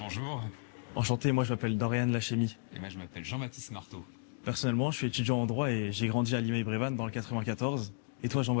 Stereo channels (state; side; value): silent; right; digital silence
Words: enchanté, moi je m'appelle Dorian Lachemy. et moi je m'appelle Jean-Baptiste Marteau. Personnellement, je suis étudiant en droit et j'ai grandi à Limeil-Brévannes dans le 94. Et toi